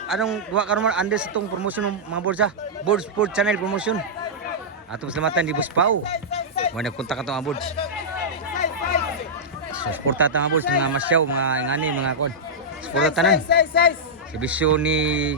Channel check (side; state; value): both; normal; correlation -0.10